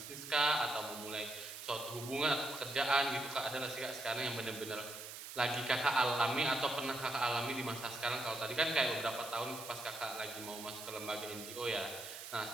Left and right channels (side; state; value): right; noise; hiss, 10 dB below the sound